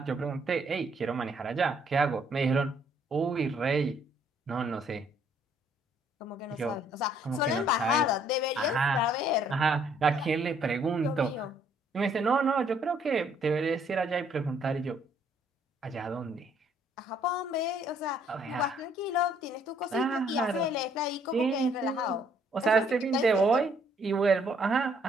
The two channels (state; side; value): normal; both; correlation 0.65